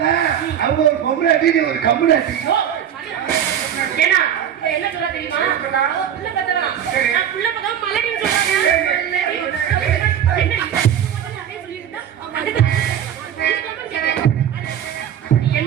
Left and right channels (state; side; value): quieter; left; 9.4 dB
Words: அவங்க ஒரு பொம்பளை அடி ஒரு கம்பளை அடி. ஐயோ, ஏன்னா இவ என்ன சொல்ல தெரியுமா? நான் புள்ள பெத்தவனா? நான் புள்ள பக்கம் மலடின்னு சொல்றாங்க. என்னடி? அதே சொல்லிட்டு இருந்தா